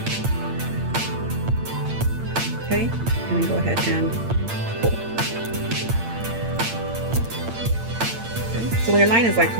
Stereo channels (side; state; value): left; late; 8.8 ms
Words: Okay, and then go ahead and pull. Okay. So when your line is like